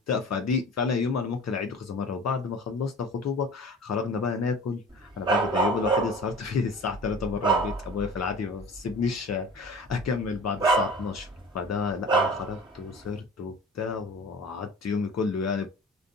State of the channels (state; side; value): normal; both; correlation 0.40